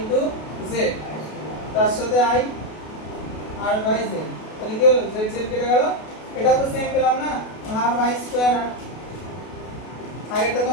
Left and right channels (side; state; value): right; late; 32 ms